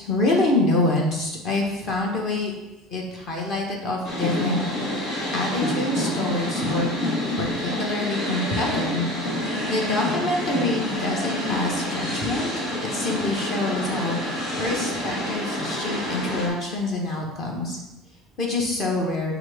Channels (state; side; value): normal; both; correlation 0.34